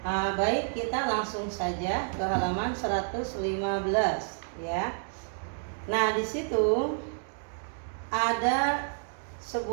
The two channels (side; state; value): left; silent; 58 dB below the other